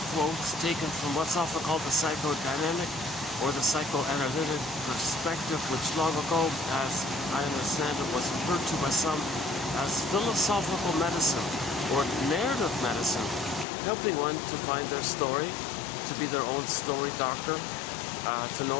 quotes taken from what's often called the psychodynamic or the psychoanalytic perspective, which long ago, as I understand it, was referred to by some as philosophical medicine or narrative medicine, helping one to find their story, to be their own story doctor, to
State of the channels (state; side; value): drops out; right; at 13.7 s